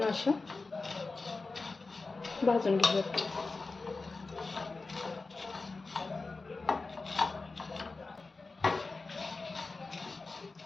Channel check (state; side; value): quieter; right; 3.8 dB